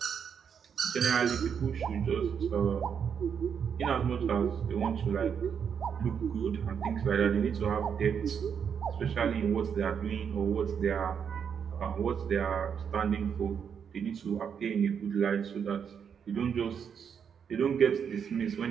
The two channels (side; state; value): left; quieter; 7.3 dB